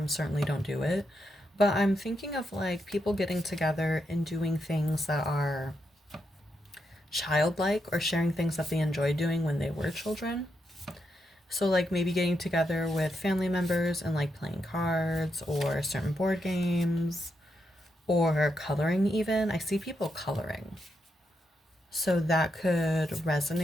certainly don't do it. But I'm thinking of like people getting together and doing things that are childlike or sharing things that they enjoyed doing when they were children. So, like maybe getting together with family members and like playing cards or certain board games or coloring, even. I see people coloring. So, that could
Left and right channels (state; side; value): normal; both; correlation 0.82